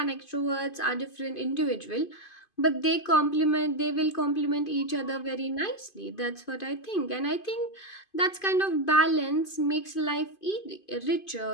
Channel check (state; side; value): late; right; 2.5 ms